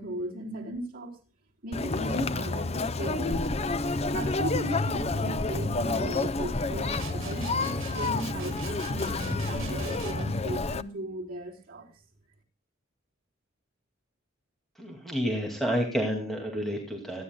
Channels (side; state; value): both; normal; correlation 0.48